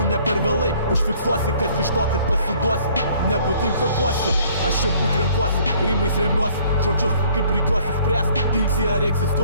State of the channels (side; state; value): both; inverted; correlation -0.58